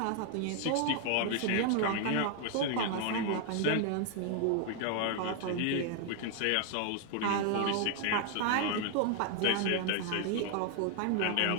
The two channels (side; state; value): both; different; correlation 0.00